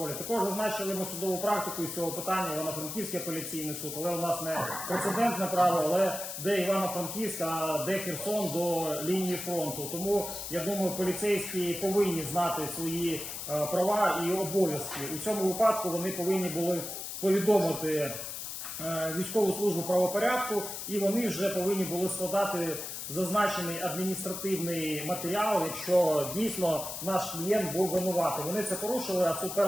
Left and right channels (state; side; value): noise; left; hiss, 7 dB below the sound